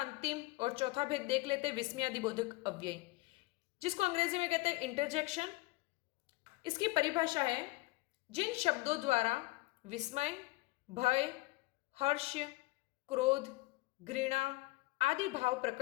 अंतिम और चौथा भेद देख लेते हैं, विस्मयादिबोधक अव्यय, जिसको अंग्रेजी में कहते हैं इंटरजेक्शन। इसकी परिभाषा है जिन शब्दों द्वारा विस्मय, भय, हर्ष, क्रोध, घृणा आदि भाव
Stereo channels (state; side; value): quieter; right; 21.8 dB